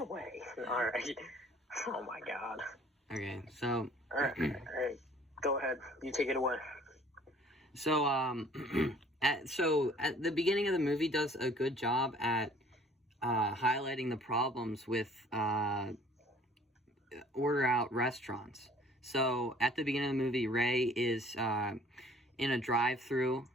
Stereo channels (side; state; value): both; normal; correlation 0.54